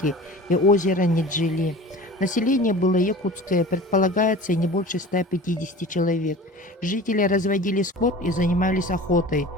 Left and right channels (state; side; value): normal; both; correlation 0.39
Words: и озера Неджили. Население было якутское, предполагается не больше 150 человек. Жители разводили скот и занимались охотой.